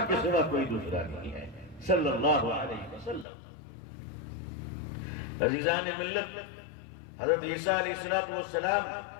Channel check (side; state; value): right; drops out; at 3.2 s